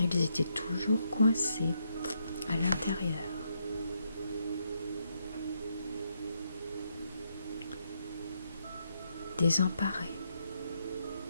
ils étaient toujours coincés à l'intérieur. désemparé.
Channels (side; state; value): both; inverted; correlation -0.78